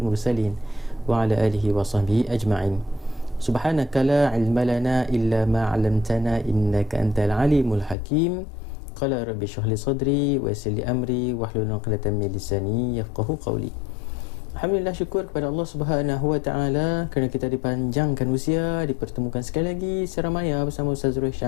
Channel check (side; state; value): right; drops out; at 8.0 s